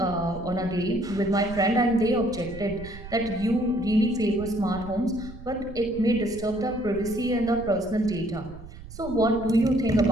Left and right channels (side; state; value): right; noise; rumble, 14 dB below the sound